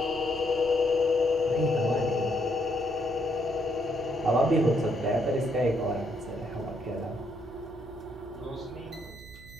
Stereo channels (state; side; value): noise; right; hum, 18 dB below the sound